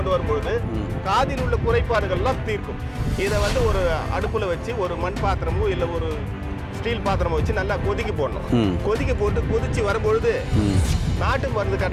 வரும்பொழுது காதில் உள்ள குறைபாடுகள்லாம் தீர்க்கும். இதை வந்து ஒரு அடுப்பில் வச்சு ஒரு மண் பாத்திரமோ இல்லை ஒரு ஸ்டீல் பாத்திரமோ வச்சு நல்லா கொதிக்க போடணும். கொதிக்க போட்டு கொதிச்சு வரும்பொழுது நாட்டு மருந்து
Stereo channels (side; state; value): both; identical; correlation 1.00